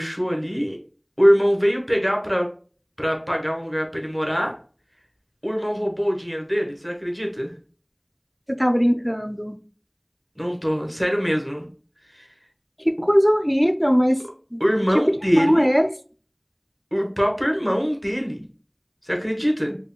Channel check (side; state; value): both; identical; correlation 1.00